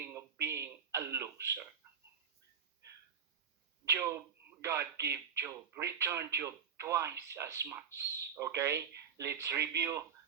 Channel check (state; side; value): quieter; left; 7.1 dB